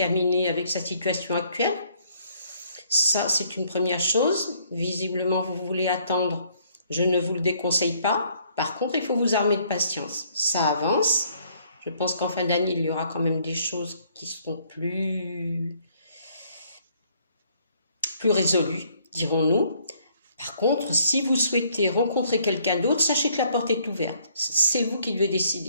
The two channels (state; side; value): inverted; both; correlation -0.65